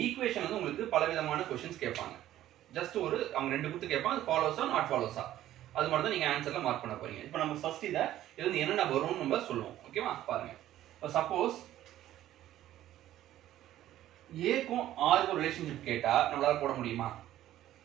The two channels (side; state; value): left; quieter; 13.2 dB